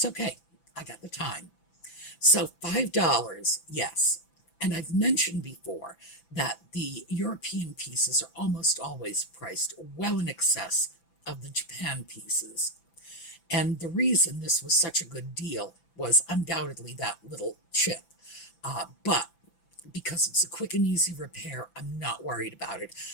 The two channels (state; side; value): late; right; 5.9 ms